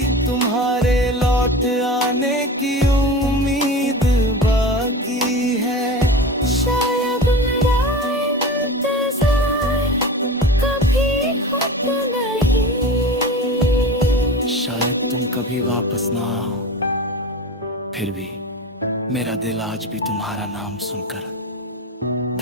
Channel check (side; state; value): both; normal; correlation 0.31